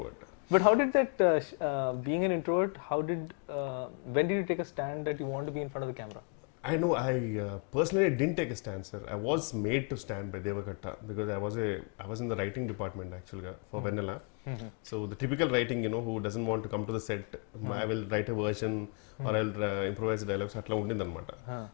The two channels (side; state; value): right; quieter; 38.1 dB